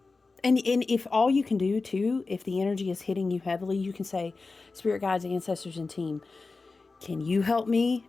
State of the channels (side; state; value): right; quieter; 3.9 dB